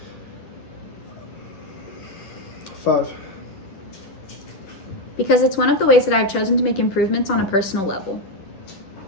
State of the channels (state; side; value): late; right; 10 ms